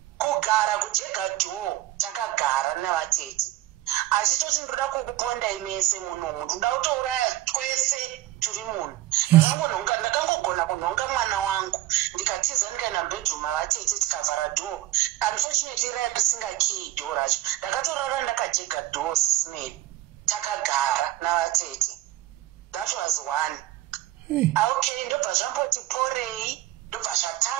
Kugara kujega door takagara navatete. Achitoti ndoda kukuponda imese munhu, ndoda kutouraya twese turi munhu. Ndakangogona kunhonga mwana wangu. Ndikatiza ndikaenda bedroom mavatete tikavhara door. Unfortunately risinga key door racho. Ndakatorara ndakajega door sisimeli. Takagara navatete. That was one. Okay, ndobva zvamboti porei, ndobva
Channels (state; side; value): quieter; left; 15.3 dB